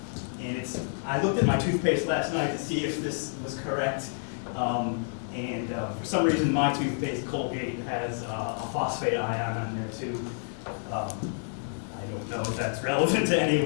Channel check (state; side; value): silent; right; digital silence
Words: I looked at my toothpaste last night to see if this was correct. For some reason, my toothpaste, Colgate, has a phosphate ion on there too. I don't know if that's relevant to